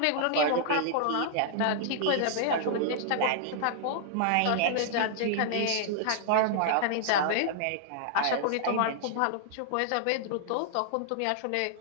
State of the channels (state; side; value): different; both; correlation -0.01